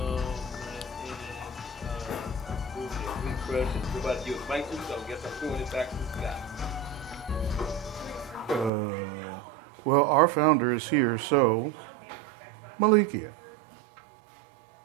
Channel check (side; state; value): left; drops out; at 8.7 s